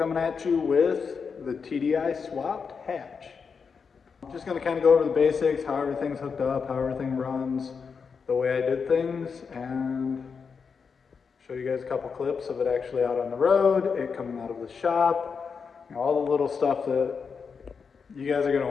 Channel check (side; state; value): right; quieter; 5.7 dB